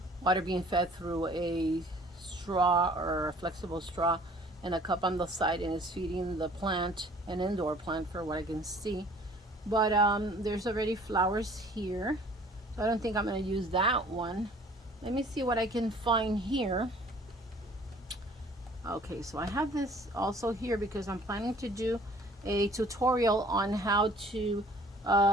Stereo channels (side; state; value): both; normal; correlation 0.53